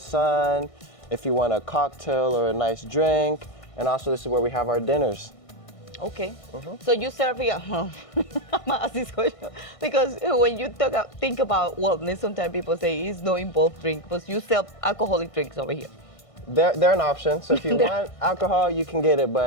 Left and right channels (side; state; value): right; late; 1.6 ms